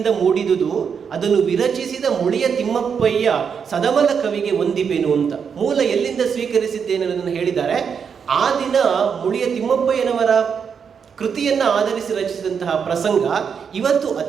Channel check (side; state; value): left; quieter; 6.7 dB